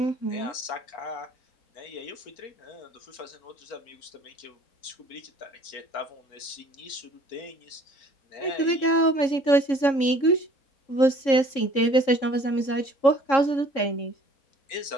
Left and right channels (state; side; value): late; right; 3.7 ms